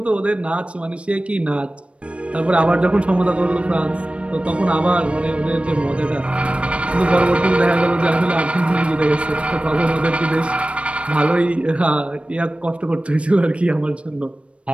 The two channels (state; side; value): late; left; 0.061 ms